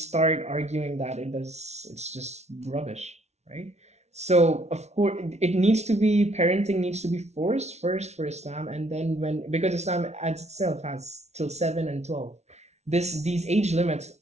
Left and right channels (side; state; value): left; late; 0.32 ms